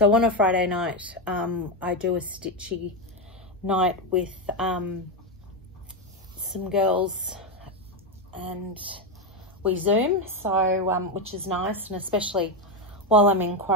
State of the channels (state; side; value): normal; both; correlation 0.09